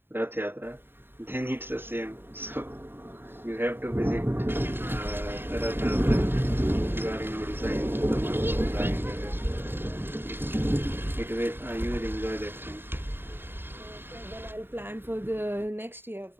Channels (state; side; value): late; left; 0.10 ms